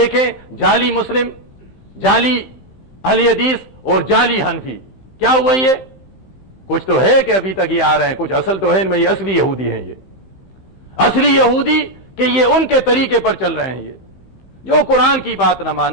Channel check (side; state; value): right; late; 15 ms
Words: جعلی مسلم، جعلی اہل حدیث اور جعلی حنفی، کیا ہوا یہ؟ کچھ تو ہے کہ ابھی تک یہ آ رہے ہیں، کچھ اصل تو ہے ان میں. یہ اصلی یہودی ہیں، یہ اصلی یہودی کہ یہ ان کے طریقے پر چل رہے ہیں. یہ جو قرآن کی بات نہ